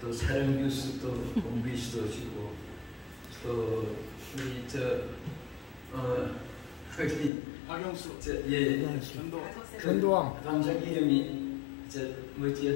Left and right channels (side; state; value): right; drops out; at 7.3 s